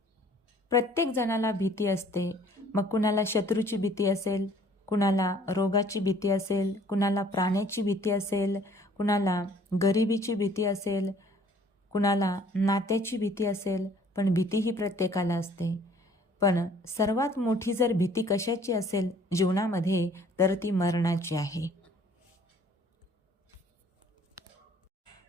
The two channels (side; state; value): both; normal; correlation 0.56